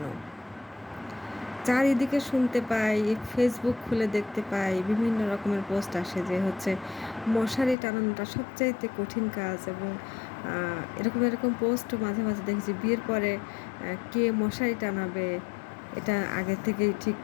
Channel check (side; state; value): right; drops out; at 7.8 s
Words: চারিদিকে শুনতে পাই, ফেসবুক খুলে দেখতে পাই, বিভিন্ন রকমের পোস্ট আসে যে হচ্ছে মশারি টানানোটা সবচাইতে কঠিন কাজ এবং এরকম পোস্টও মাঝে, মাঝে দেখেছি বিয়ের পরে কে মশারি টানাবে এটা আগের থেকেই ঠিক